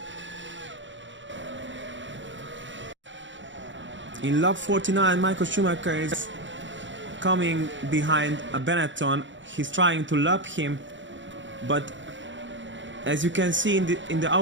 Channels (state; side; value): late; left; 0.54 ms